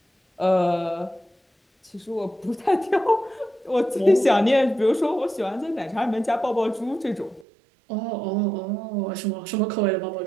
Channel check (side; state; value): left; drops out; at 7.5 s